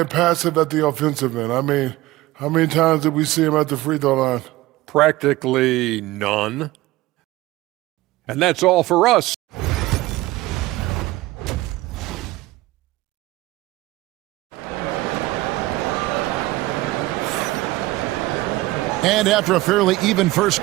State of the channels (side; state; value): left; quieter; 18.3 dB